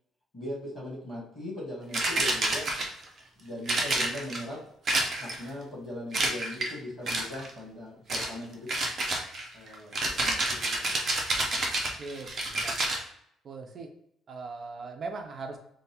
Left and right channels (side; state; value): both; normal; correlation 0.72